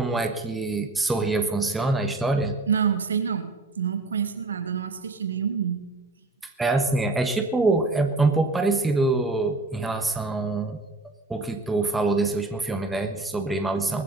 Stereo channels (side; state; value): left; quieter; 3.1 dB